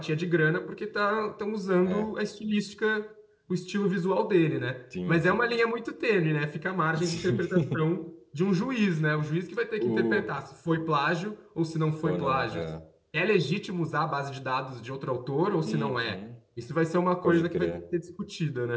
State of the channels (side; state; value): both; identical; correlation 1.00